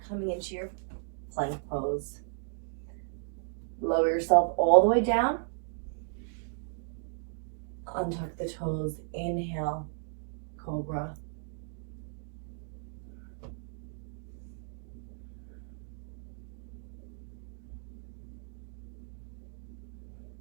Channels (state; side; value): silent; left; digital silence